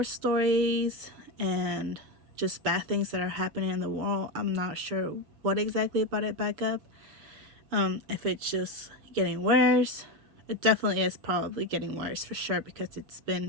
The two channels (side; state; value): left; late; 6.9 ms